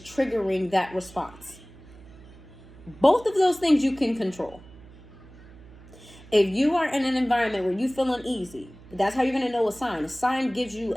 that response. Both of those things you can control. If you are in an environment where you feel uneasy, that's how you're going to know a sign. A sign gives you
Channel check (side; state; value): right; noise; hum, 21 dB below the sound